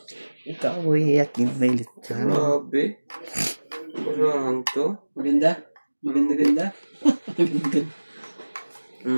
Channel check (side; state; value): both; inverted; correlation -1.00